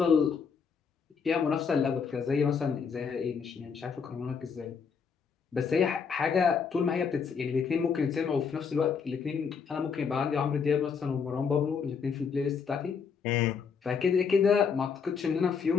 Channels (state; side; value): quieter; right; 6.0 dB